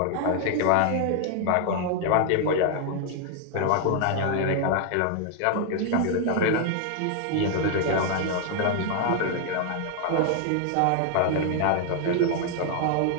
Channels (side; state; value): both; different; correlation 0.00